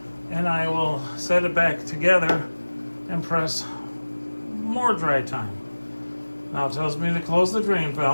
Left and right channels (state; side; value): inverted; both; correlation -1.00